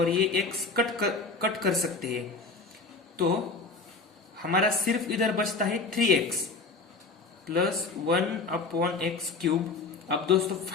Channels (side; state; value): right; quieter; 4.0 dB